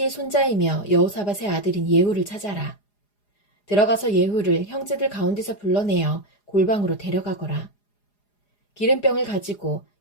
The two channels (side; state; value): right; late; 4.9 ms